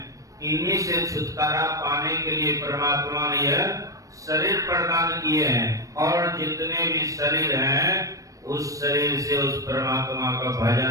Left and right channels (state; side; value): late; left; 0.16 ms